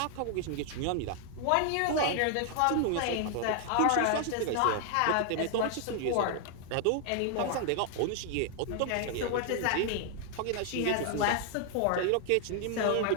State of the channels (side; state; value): both; different; correlation 0.00